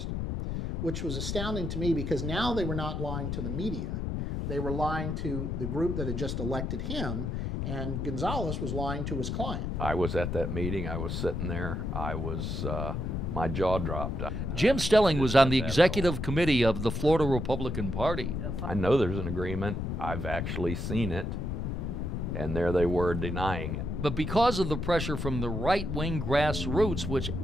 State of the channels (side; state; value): left; noise; rumble, 2 dB below the sound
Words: which was astounding to me because now they were not lying to the media. They were lying to the group that had just elected him, and Gonzalez was lying to his client. I was at that meeting. I was sitting there. My jaw dropped. Jim Stelling was on the executive committee of the Florida Republican Party. I know there's an agreement. I've actually seen it, and there they were denying it. But because of the pressure from the right-wing grassroots, which